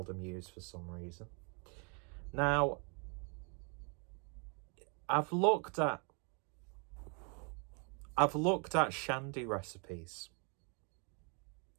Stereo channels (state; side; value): quieter; left; 35.8 dB